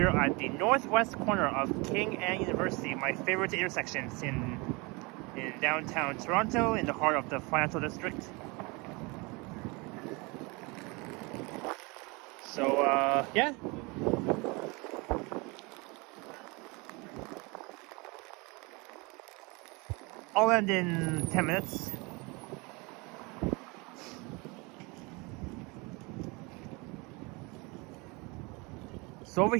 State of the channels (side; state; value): left; quieter; 27.3 dB